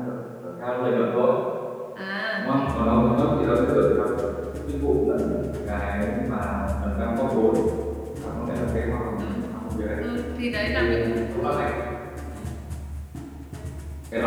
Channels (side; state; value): both; identical; correlation 1.00